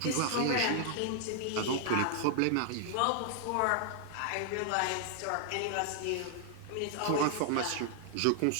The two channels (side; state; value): both; different; correlation 0.00